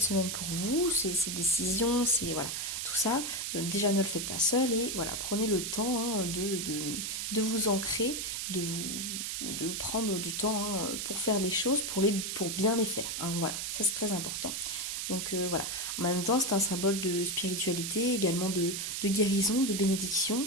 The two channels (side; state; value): right; noise; hiss, 3 dB below the sound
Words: semaine pour vous, ces décisions, voilà, tout ça, déjà ne le faites pas seul et voilà, prenez le temps hein, de vous ancrer, de prendre du temps hein, pour faire les choses, pour bien les faire. Hein, voilà, ça c'est très important. Donc voilà, en même temps c'est un symbole de spiritualité, également de guérison, de bénédiction.